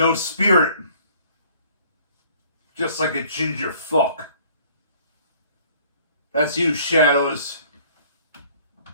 spirit. Just like a ginger fuck. That's you, Shadows.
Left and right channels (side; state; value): both; inverted; correlation -0.55